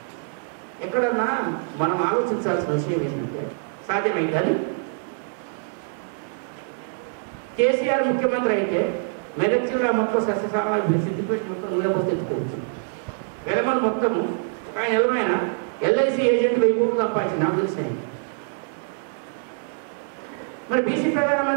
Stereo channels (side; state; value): left; silent; 62 dB below the other